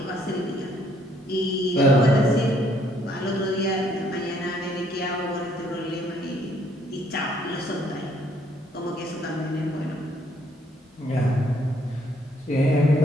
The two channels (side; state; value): both; normal; correlation 0.66